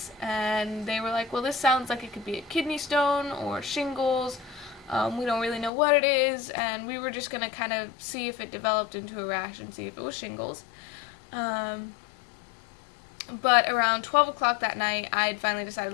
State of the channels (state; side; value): drops out; right; at 5.7 s